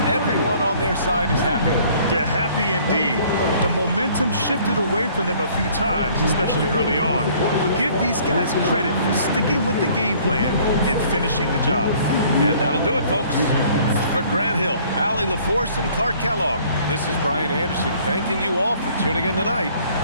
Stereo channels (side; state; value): both; inverted; correlation -0.57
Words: everyone on their side is happy. Yeah, happy indeed. The momentum shifted away from them a few times, especially early on. But give these guys credit for sticking with the game plan and finishing the job. And that'll do it, folks. For Grant Hill, Allie LaForce, and Clark Kellogg, this is Brian Anderson thanking you all for tuning in tonight.